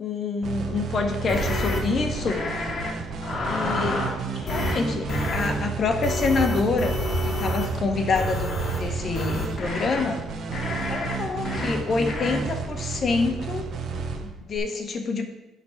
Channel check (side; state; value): both; normal; correlation 0.71